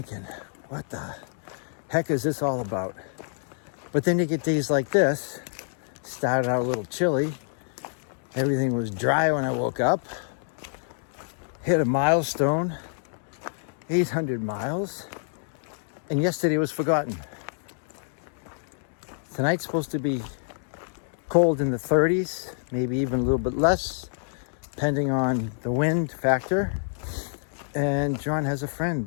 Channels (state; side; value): silent; right; digital silence